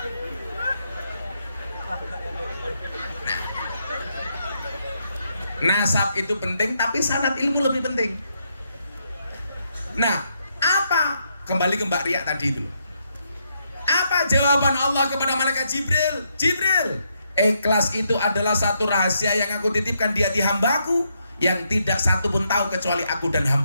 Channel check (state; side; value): inverted; both; correlation -0.78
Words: Nasab itu penting, tapi sanad ilmu lebih penting. Nah, apa? Kembali ke Mbak Ria tadi itu. Apa jawaban Allah kepada malaikat Jibril? Jibril, ikhlas itu adalah satu rahasia yang aku titipkan di hati hambaku, yang tidak satu pun tahu kecuali aku dan